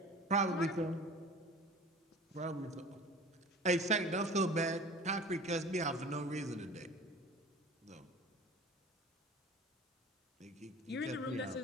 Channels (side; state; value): both; normal; correlation 0.41